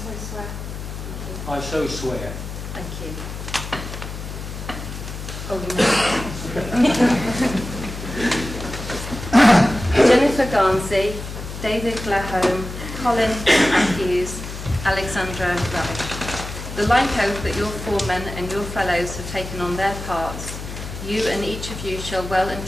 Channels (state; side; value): noise; left; hum, 9 dB below the sound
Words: swear. I so swear. Thank you. Oh, no. Jennifer Garnsey, David Glahome, Colin Matthews, Alexandra Ravish. The like oath that your foremen and your fellows have taken on their parts, you and each of you shall well and